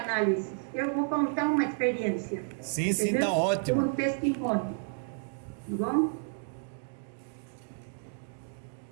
eu vou contar uma experiência. Sim, sim, tá ótimo. Um testemunho, tá bom?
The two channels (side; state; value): left; silent; digital silence